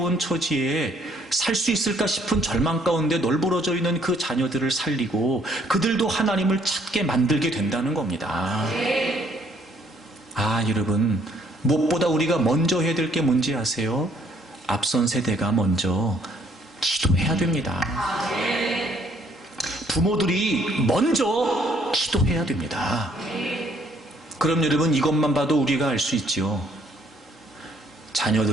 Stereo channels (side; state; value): both; normal; correlation 0.65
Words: 처지에 살 수 있을까 싶은 절망 가운데 널브러져 있는 그 자녀들을 살리고 그들도 하나님을 찾게 만들게 된다는 겁니다. 여러분 무엇보다 우리가 먼저 해야 될 게 뭔지 아세요? 앞선 세대가 먼저 기도해야 됩니다. 부모들이 먼저 기도해야 됩니다. 그럼 여러분 이것만 봐도 우리가 알 수 있죠.